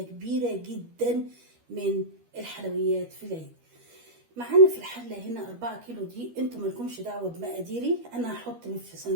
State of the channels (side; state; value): left; late; 12 ms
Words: كبيرة جدا من الحلويات في العيد. معانا في الحلة هنا 4 كيلو دي، انتوا مالكمش دعوة بمقاديري، انا هحط في